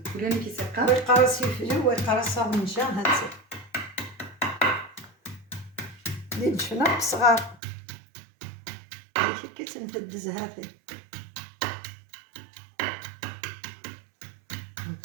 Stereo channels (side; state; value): left; drops out; at 7.6 s